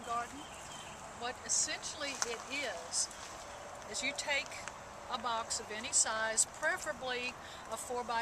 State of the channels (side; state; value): both; identical; correlation 1.00